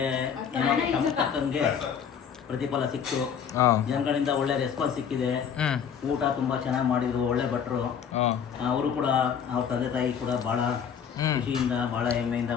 ಏನೋ ನಮ್ಗೆ ತಕ್ಕಂಗೆ ಪ್ರತಿಫಲ ಸಿಕ್ತು. ಜನಗಳಿಂದ ಒಳ್ಳೆ ರೆಸ್ಪಾನ್ಸ್ ಸಿಕ್ಕಿದೆ. ಊಟ ತುಂಬಾ ಚೆನ್ನಾಗಿ ಮಾಡಿದ್ರು, ಒಳ್ಳೆ ಭಟ್ರು. ಅವರು ಕೂಡ, ಅವ್ರ ತಂದೆ ತಾಯಿ ಕೂಡ ಬಹಳ ಖುಷಿಯಿಂದ, ಬಹಳ ಹೆಮ್ಮೆಯಿಂದ,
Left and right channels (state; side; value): quieter; right; 7.6 dB